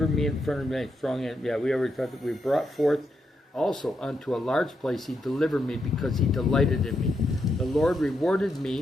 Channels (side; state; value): both; normal; correlation 0.82